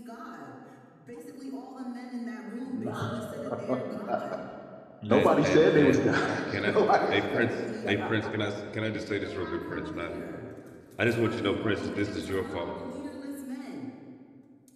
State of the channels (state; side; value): identical; both; correlation 1.00